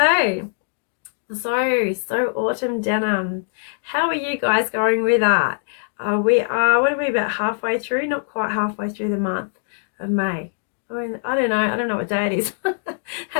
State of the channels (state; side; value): silent; right; digital silence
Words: So Autumn Denim. How are you guys going with that? We are, what are we, about halfway through? Not quite halfway through the month of May. I mean, I don't know what day it is.